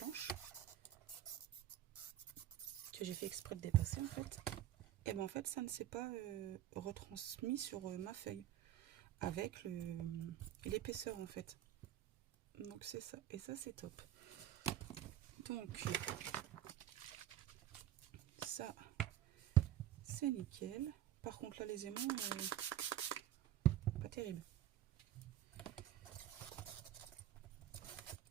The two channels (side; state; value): left; quieter; 12.7 dB